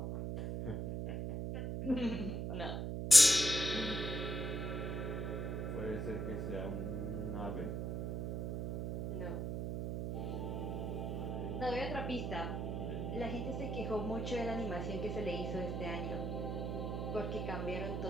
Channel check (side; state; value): right; noise; hum, 2 dB below the sound